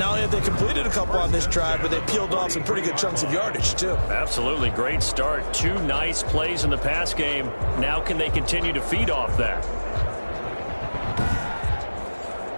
only have they completed a couple on this drive, but they peeled off some pretty good chunks of yardage, too. Absolutely. Great start. 2 nice plays in the pass game. Now can they continue to feed off that?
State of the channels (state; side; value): inverted; both; correlation -1.00